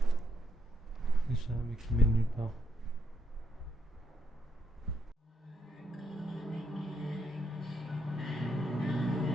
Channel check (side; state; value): both; normal; correlation 0.77